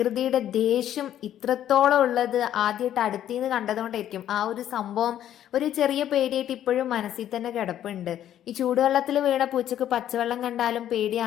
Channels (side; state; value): right; quieter; 11.2 dB